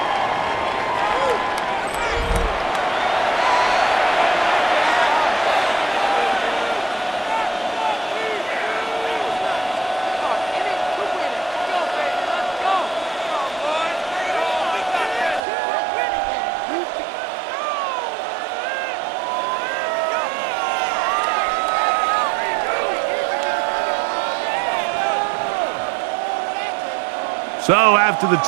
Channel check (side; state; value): left; drops out; at 15.4 s